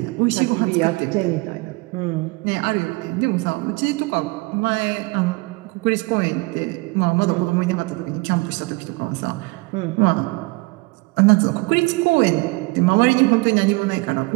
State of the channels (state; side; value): quieter; left; 25.7 dB